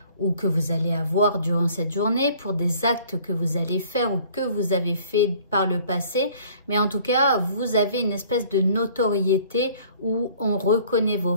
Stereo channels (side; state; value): both; inverted; correlation -0.54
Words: ou que vous allez avoir durant cette journée, pour des actes que vous allez faire ou que vous avez fait par le passé. Mais en tout cas, vous avez une espèce de notoriété où on reconnaît vos